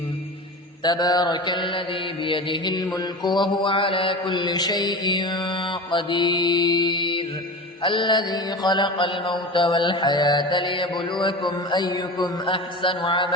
تبارك الذي بيده الملك وهو على كل شيء قدير، الذي خلق الموت والحياة ليبلوكم أيكم أحسن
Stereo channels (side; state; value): both; normal; correlation 0.29